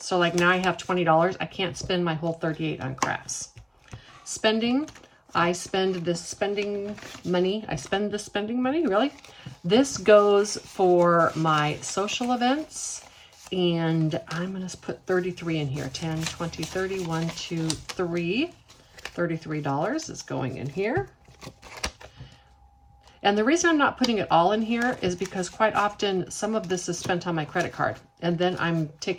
like now I have $20. I can't spend my whole $38 on crafts. Spending, I spend this spending money. Really? This goes for my social events, and I'm going to put 33 in here. 10, 20, 30, 1, 2, 3. $33 is going in here. And the reason I'm not putting it all in here is because quite often some of this is spent on my credit card, and then I'm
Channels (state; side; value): identical; both; correlation 1.00